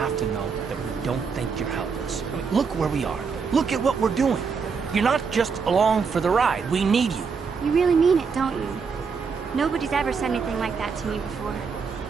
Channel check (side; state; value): left; quieter; 5.5 dB